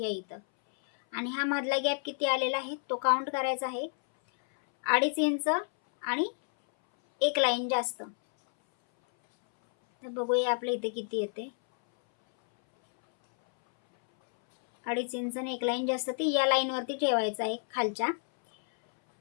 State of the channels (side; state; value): right; silent; 58 dB below the other